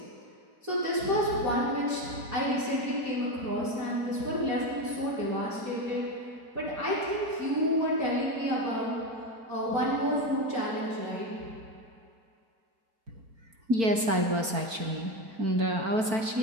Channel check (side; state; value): left; late; 4.5 ms